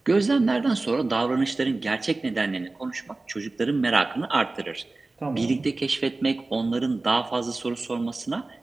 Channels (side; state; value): left; quieter; 3.3 dB